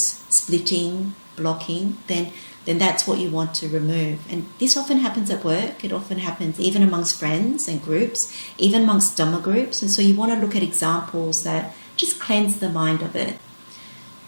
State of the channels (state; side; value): inverted; both; correlation -1.00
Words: splitting, blocking, then that's what you want to remove. And this often happens at work. It often happens even amongst friends and groups, even amongst Dhamma groups. And so you want to look at examples that just cleanse the mind of it.